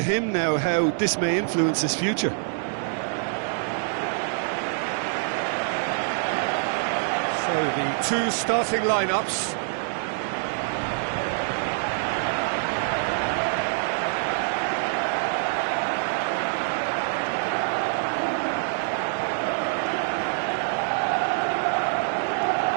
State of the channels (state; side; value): silent; left; digital silence